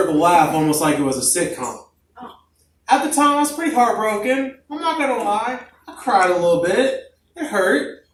laugh, almost like it was a sitcom. At the time, I was pretty heartbroken. I'm not going to lie. I cried a little bit. It hurt.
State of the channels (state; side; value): identical; both; correlation 1.00